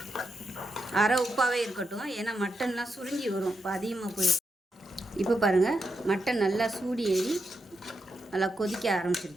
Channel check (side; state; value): both; normal; correlation 0.85